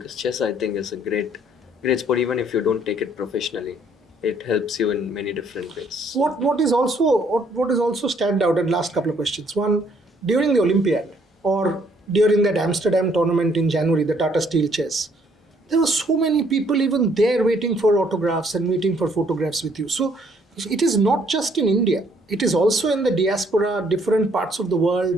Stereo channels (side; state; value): both; normal; correlation 0.65